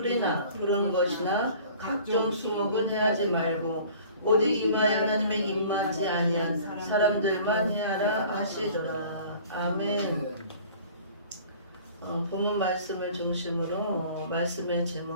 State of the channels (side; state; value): both; inverted; correlation -0.48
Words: 푸른 것이나 각종 수목은 해하지 말고 오직 이마에 하나님의 입맞지 아니한 사람들만 해하라 하시더라. 아멘. 본문 말씀을 중심으로 말씀의